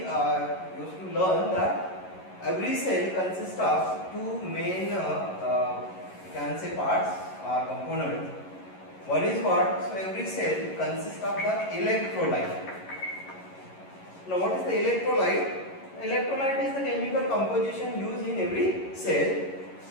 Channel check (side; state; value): right; late; 11 ms